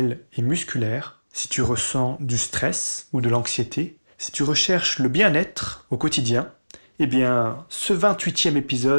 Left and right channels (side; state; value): both; inverted; correlation -1.00